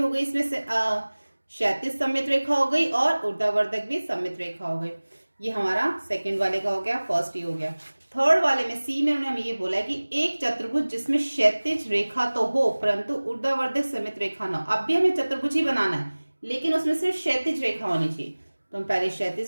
गई इसमें से, क्षैतिज सममित रेखा हो गई और ऊर्ध्वाधर भी सममित रेखा हो गई। ये हमारा सेकंड वाले का हो गया, फर्स्ट ही हो गया। थर्ड वाले में सी में उन्होंने हमें ये बोला है कि एक चतुर्भुज जिसमें क्षैतिज रेखा तो हो परंतु ऊर्ध्वाधर सममित रेखा ना हो। अब भी हमें चतुर्भुज ही बनाना है, लेकिन उसमें सिर्फ क्षैतिज रेखा होनी चाहिए। तो हम पहले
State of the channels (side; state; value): both; inverted; correlation -1.00